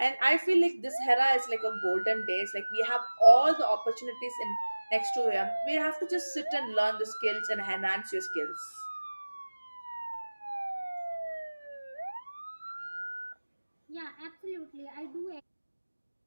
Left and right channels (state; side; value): inverted; both; correlation -1.00